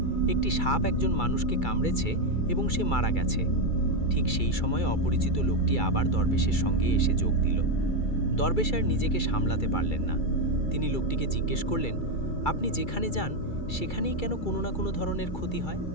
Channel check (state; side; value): late; right; 2.3 ms